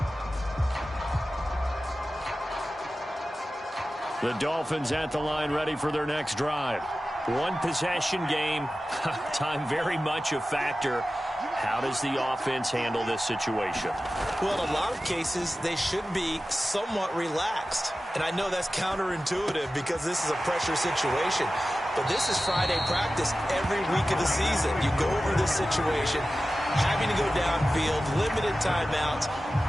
The Dolphins at the line ready for their next drive. One possession game. Time very much a factor. How does the offense handle this situation? Well, in a lot of cases, they should be somewhat relaxed. And I know that's counterintuitive because this is a pressure situation. But this is Friday practice every week of the season. You go over this situation, having to go downfield, limited timeouts,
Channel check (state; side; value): normal; both; correlation 0.95